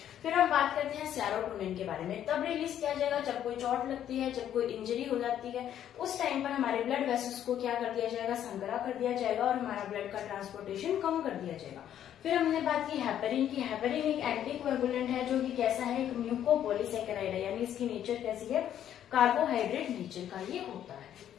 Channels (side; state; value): right; quieter; 10.5 dB